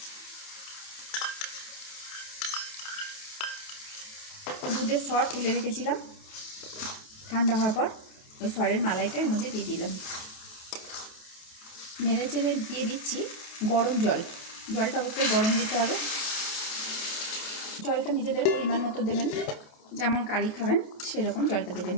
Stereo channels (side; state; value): right; late; 28 ms